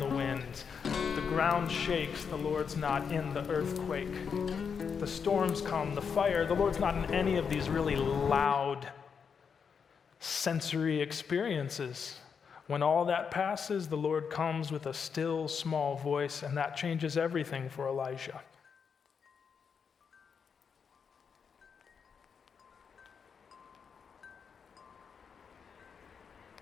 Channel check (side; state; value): right; quieter; 6.4 dB